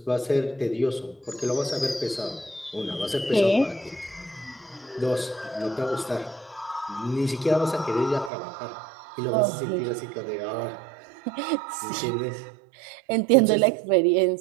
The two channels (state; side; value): drops out; left; at 8.3 s